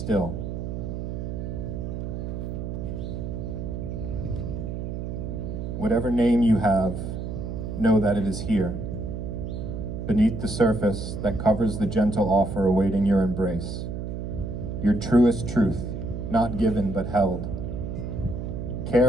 Whatever name you have, know that it is here, beneath the surface that covers the gentle offer awaiting your embrace. Your truest truth, not given but held.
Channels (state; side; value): noise; right; hum, 5 dB below the sound